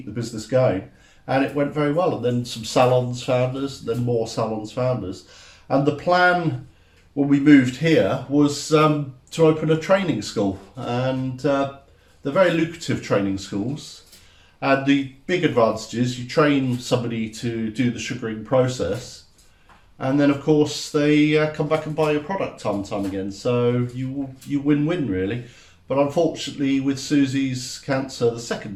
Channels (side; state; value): both; identical; correlation 1.00